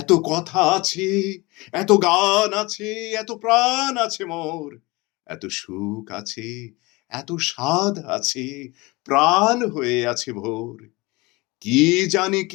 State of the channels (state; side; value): quieter; right; 23.5 dB